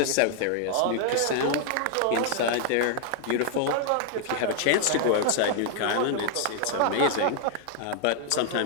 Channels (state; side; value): different; both; correlation 0.00